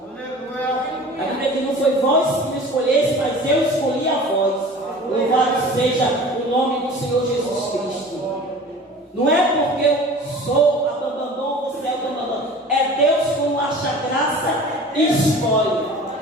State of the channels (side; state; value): both; normal; correlation 0.41